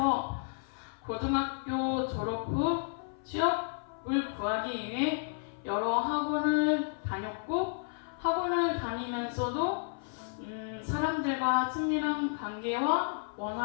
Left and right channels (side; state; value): right; silent; 56 dB below the other